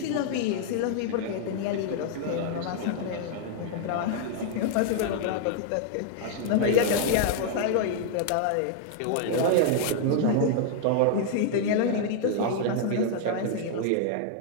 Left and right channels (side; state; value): both; different; correlation 0.00